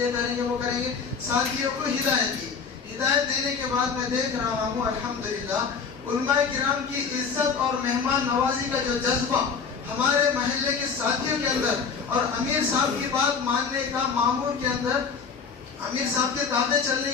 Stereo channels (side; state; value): right; quieter; 5.7 dB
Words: کریں گے وہ کریں گے۔ ساتھیوں کو ہدایت دی۔ ہدایت دینے کے بعد میں دیکھ رہا ہوں الحمدللہ علماء کرام کی عزت اور مہمان نوازی کا جو جذبہ ہمارے محلے کے ساتھیوں کے اندر، اور امیر صاحب کی بات ماننے کا مامور کے اندر امیر صاحب کے تابع چلنے